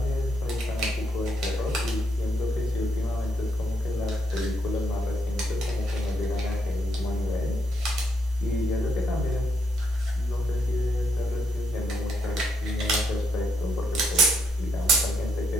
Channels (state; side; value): normal; both; correlation 0.75